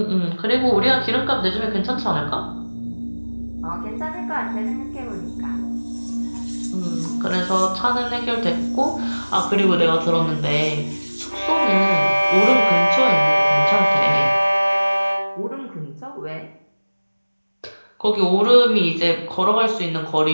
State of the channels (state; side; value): inverted; both; correlation -1.00